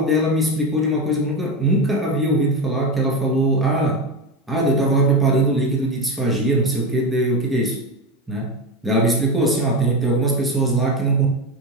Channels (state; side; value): normal; both; correlation 0.17